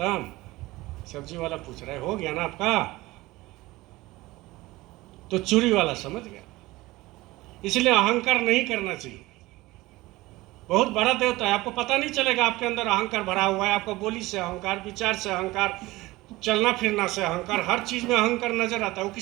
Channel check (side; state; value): left; quieter; 19.6 dB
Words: सब्जी वाला पूछ रहा है, हो गया ना आपका? तो चूड़ी वाला समझ गया। इसलिए अहंकार नहीं करना चाहिए। बहुत बड़ा देवता है, आपको पता नहीं चलेगा आपके अंदर अहंकार भरा हुआ है। आपको बोली से अहंकार, विचार से अहंकार, चलना फिरना से अहंकार, हर चीज में अहंकार नजर आता है। वो